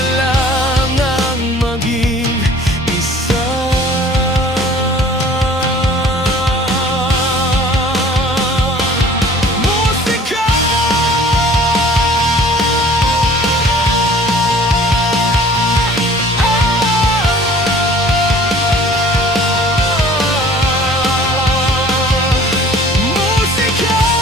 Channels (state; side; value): normal; both; correlation 0.50